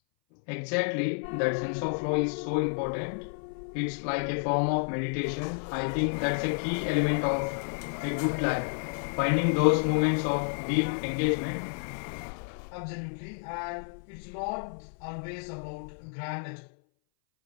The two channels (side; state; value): right; silent; 58 dB below the other